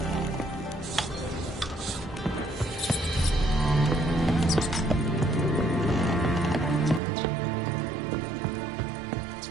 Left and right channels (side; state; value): left; drops out; at 7.0 s